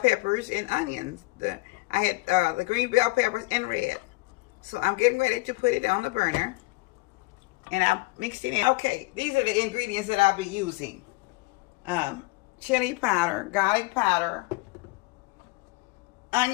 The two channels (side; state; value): right; quieter; 23.4 dB